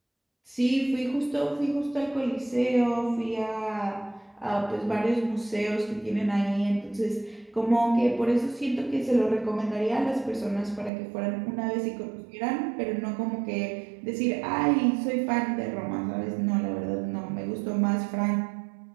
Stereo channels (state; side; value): drops out; left; at 10.9 s